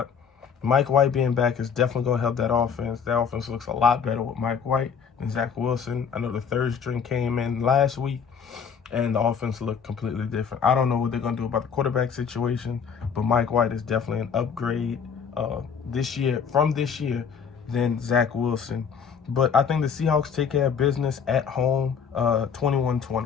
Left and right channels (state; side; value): quieter; right; 6.7 dB